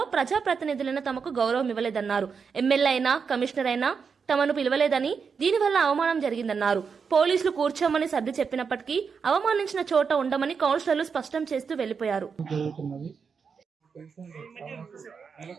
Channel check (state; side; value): quieter; left; 5.9 dB